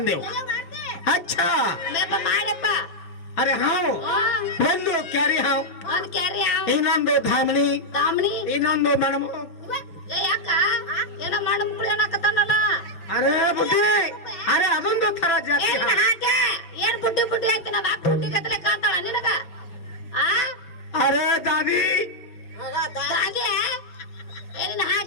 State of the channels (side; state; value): right; late; 6.1 ms